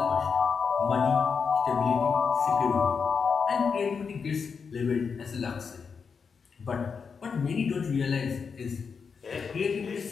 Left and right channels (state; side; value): quieter; right; 5.8 dB